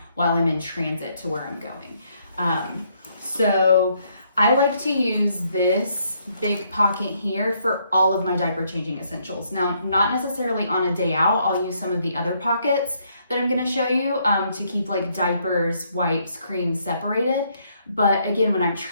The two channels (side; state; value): both; inverted; correlation -0.71